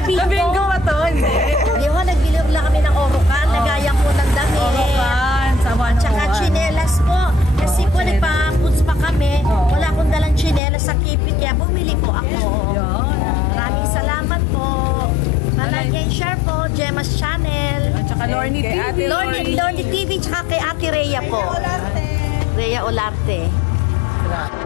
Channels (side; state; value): right; drops out; at 10.6 s